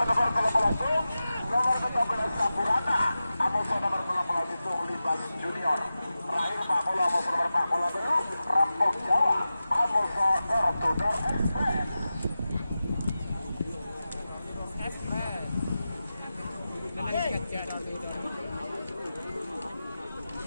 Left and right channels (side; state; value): both; inverted; correlation -0.93